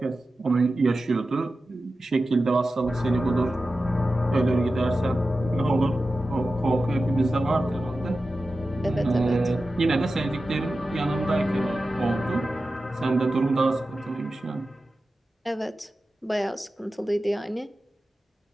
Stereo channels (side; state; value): both; normal; correlation 0.93